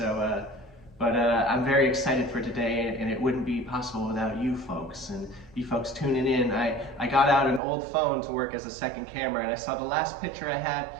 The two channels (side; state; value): left; drops out; at 7.6 s